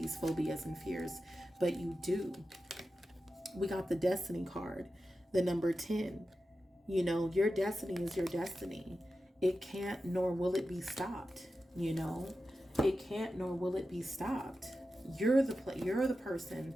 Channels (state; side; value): normal; both; correlation 0.92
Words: phobias and fears, but you do. We got the Destiny card, the number 10. You know, your destiny is your destiny. It can't nor will it be stopped. You know, it can't nor will it be stopped. You're the